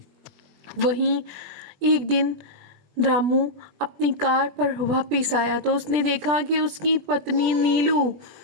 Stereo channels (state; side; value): late; left; 20 ms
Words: वहीं एक दिन रामू अपनी कार पर वापस आया तो उसने देखा कि उसकी पत्नी नीलू